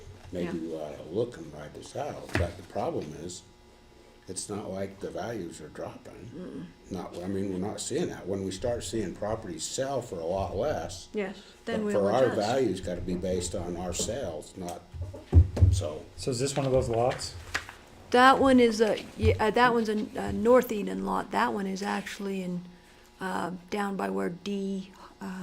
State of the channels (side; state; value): both; identical; correlation 1.00